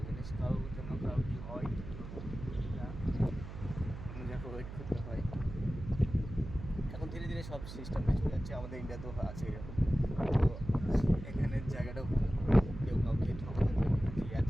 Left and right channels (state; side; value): noise; right; hum, 10 dB below the sound